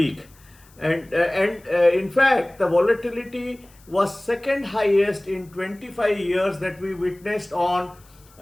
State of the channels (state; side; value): noise; left; hiss, 28 dB below the sound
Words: and in fact the volatility was second highest in 25 years that we witnessed on